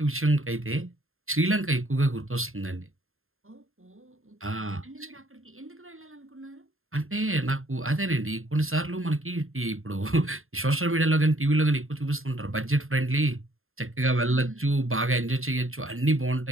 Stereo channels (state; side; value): late; left; 0.61 ms